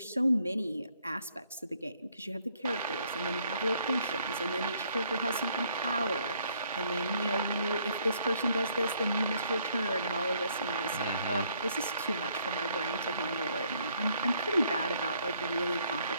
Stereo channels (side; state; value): both; inverted; correlation -0.67